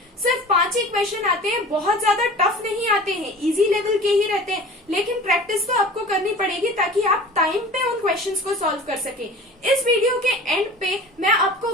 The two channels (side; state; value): both; normal; correlation 0.40